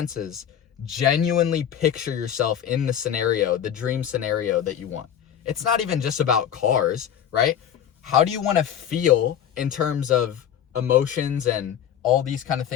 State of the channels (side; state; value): right; quieter; 9.4 dB